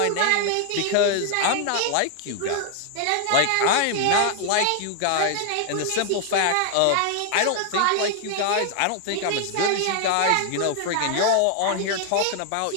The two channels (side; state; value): both; different; correlation 0.00